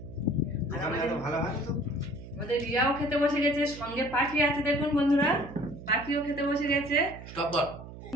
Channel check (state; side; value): noise; right; hum, 14 dB below the sound